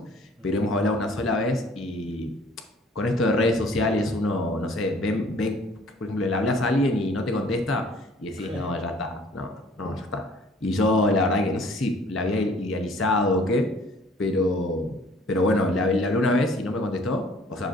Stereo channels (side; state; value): both; normal; correlation 0.55